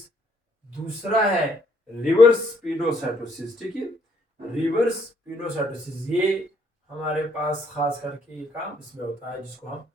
दूसरा है रिवर्स पिनोसाइटोसिस, ठीक है, रिवर्स पिनोसाइटोसिस। ये हमारे पास खास करके ये काम इसमें होता है जिसको हम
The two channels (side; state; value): both; normal; correlation 0.68